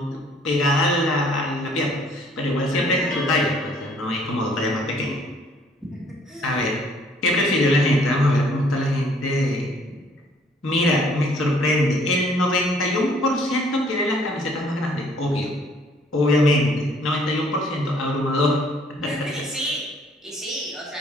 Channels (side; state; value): both; normal; correlation 0.60